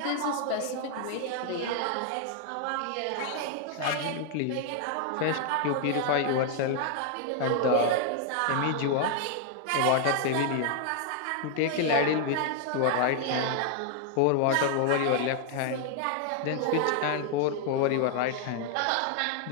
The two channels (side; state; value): both; different; correlation 0.00